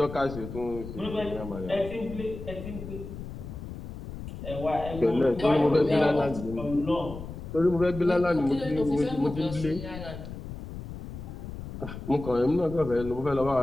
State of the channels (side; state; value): left; noise; rumble, 10 dB below the sound